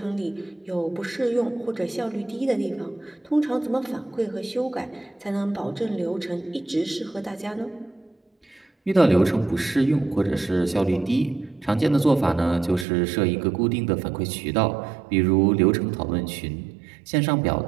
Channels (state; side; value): drops out; left; at 12.9 s